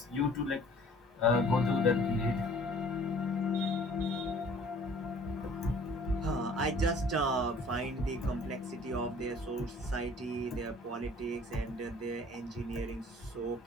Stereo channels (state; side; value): normal; both; correlation 0.52